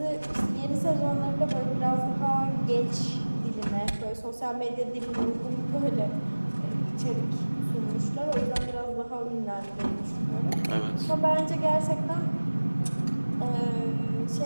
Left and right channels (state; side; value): inverted; both; correlation -1.00